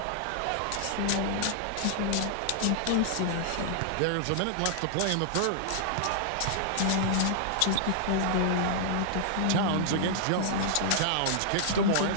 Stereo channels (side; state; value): both; different; correlation -0.01